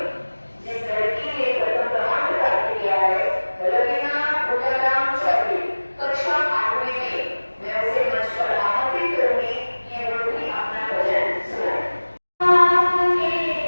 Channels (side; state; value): both; inverted; correlation -1.00